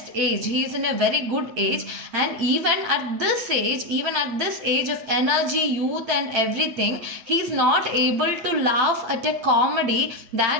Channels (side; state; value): left; late; 8.8 ms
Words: age. He is in a very good age, and even at this age of energy, youth and everything, he is not able to laugh at a comedy